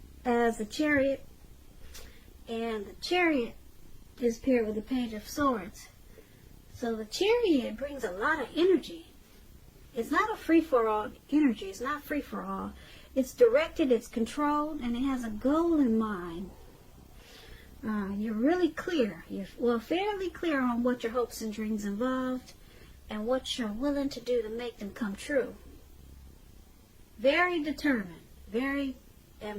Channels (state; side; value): identical; both; correlation 1.00